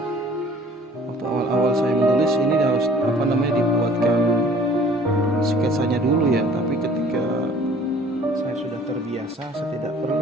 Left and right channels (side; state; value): both; normal; correlation 0.52